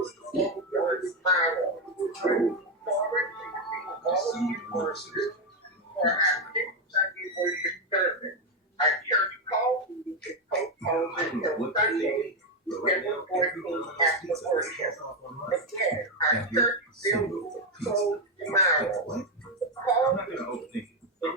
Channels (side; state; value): both; normal; correlation 0.07